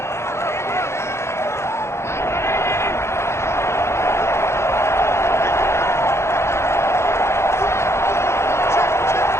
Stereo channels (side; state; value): right; late; 0.13 ms